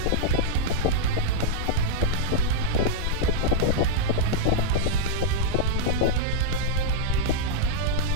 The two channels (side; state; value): both; different; correlation -0.02